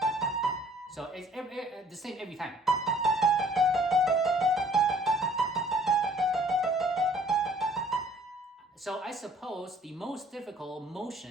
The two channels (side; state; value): both; normal; correlation 0.56